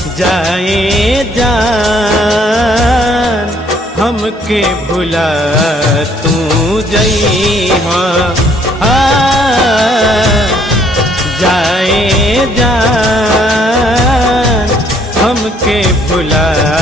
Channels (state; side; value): normal; both; correlation 0.64